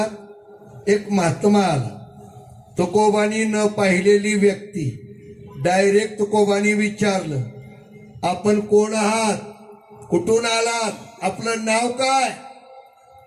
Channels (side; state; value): both; identical; correlation 1.00